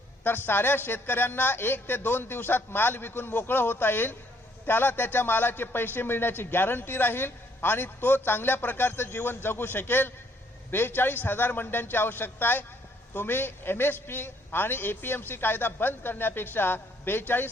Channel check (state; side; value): normal; both; correlation 0.67